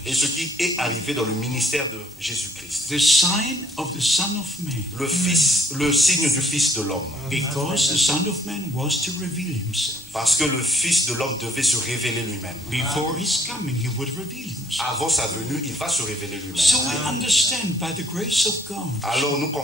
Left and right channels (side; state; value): both; normal; correlation 0.63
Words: Et ce qui est arrivé dans le ministère de Jésus-Christ. The sign of the Son of Man. Le signe du Fils de l'homme. Because the Son of Man was to reveal himself. Parce que le Fils de l'homme devait se révéler lui-même. Before his coming, he would reveal himself. Avant sa venue, il va se révéler lui-même. So we understand by the grace of God. Alors nous